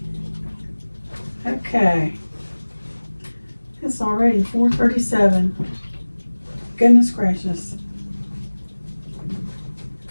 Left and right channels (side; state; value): both; inverted; correlation -1.00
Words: Okay, it's already 4:37. Goodness gracious.